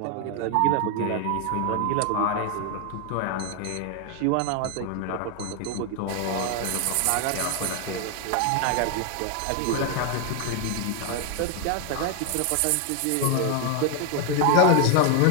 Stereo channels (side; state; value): both; different; correlation 0.00